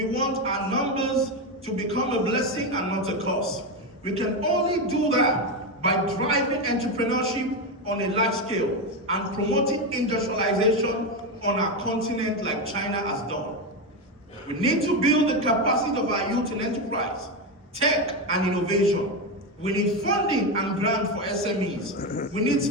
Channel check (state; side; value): normal; both; correlation 0.12